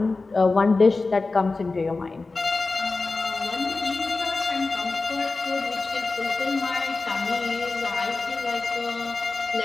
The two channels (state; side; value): quieter; right; 3.7 dB